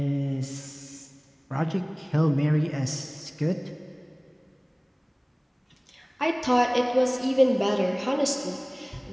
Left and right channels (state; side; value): identical; both; correlation 1.00